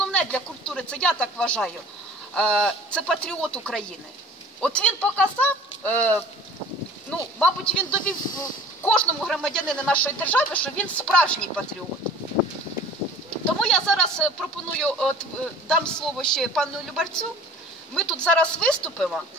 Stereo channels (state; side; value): normal; both; correlation 0.46